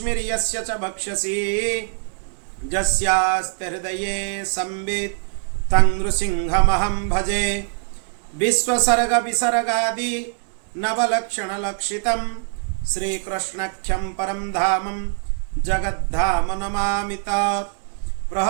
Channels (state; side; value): silent; left; 64 dB below the other